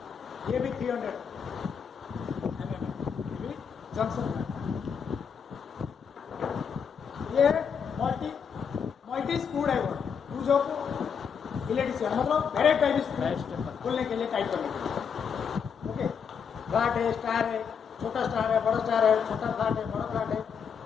ये भी 300 जंक्शन। ये multi screw driver use of electrician, मतलब डायरेक्ट टाइप खोलने के लिए, टाइट करने के लिए। ओके, फ्लैट है, स्टार है, छोटा स्टार है, बड़ा स्टार है, छोटा फ्लैट है, बड़ा फ्लैट है,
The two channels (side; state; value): right; quieter; 6.8 dB